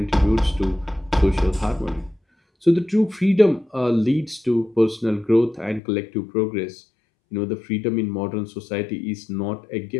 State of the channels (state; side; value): drops out; right; at 5.8 s